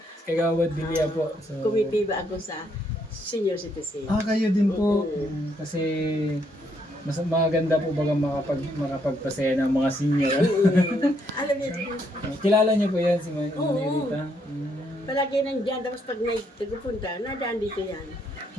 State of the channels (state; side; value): normal; both; correlation 0.73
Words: Bilya po. So, Committee ba ako sa senior citizen? kayo din po. Kasi mas maganda po baga makapagpasaya ng mga senior. Alam niyo, Kilala niyo po yan si Manay Oo. Rita? palagi nandiyan, tapos pag may tagupunta, nadaan dito yan.